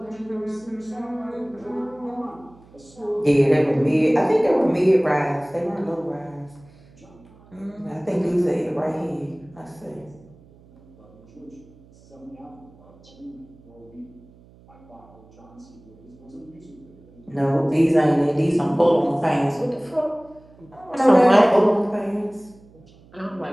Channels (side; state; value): right; noise; hum, 26 dB below the sound